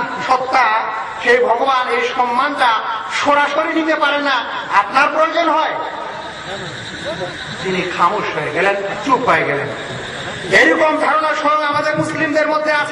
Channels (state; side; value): identical; both; correlation 1.00